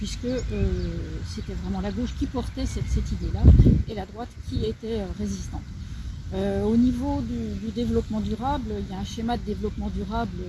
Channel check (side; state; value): both; identical; correlation 1.00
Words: c'était vraiment la gauche qui portait cette idée-là et la droite qui était résistante. Au niveau du développement durable, il y a un schéma de développement durable